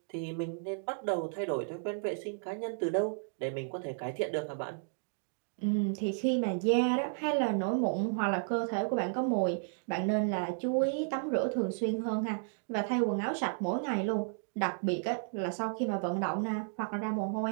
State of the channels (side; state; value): left; silent; digital silence